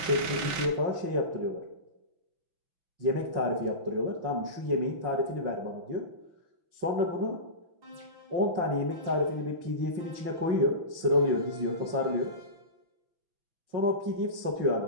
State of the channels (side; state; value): left; late; 5.9 ms